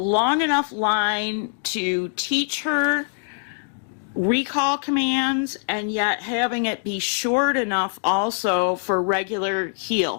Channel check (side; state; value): right; silent; digital silence